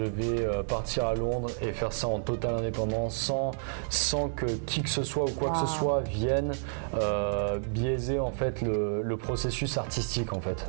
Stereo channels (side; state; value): left; silent; digital silence